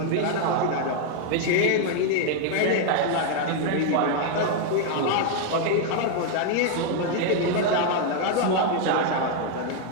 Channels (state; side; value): different; both; correlation 0.00